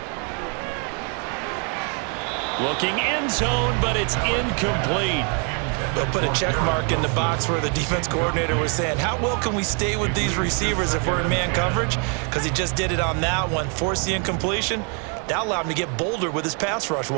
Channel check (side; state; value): left; quieter; 38.3 dB